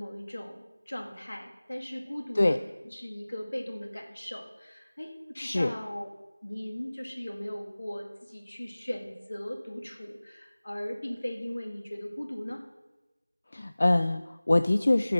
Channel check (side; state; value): both; inverted; correlation -0.99